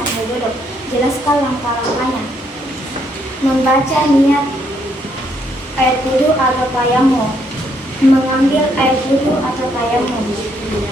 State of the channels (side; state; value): both; normal; correlation 0.72